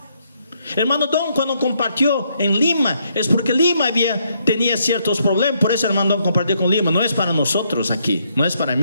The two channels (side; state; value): both; inverted; correlation -0.73